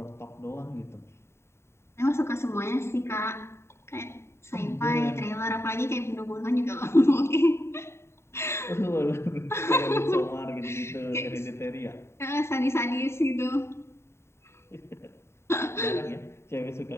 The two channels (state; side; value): late; right; 0.13 ms